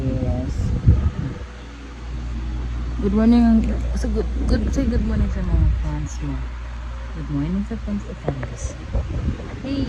Good morning. So say good morning sa mga fans mo. Good morning sa fans ni Candice. Hey!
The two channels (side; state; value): both; identical; correlation 1.00